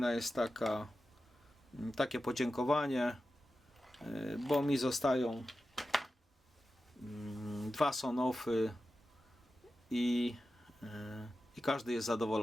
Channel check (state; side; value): normal; both; correlation 0.92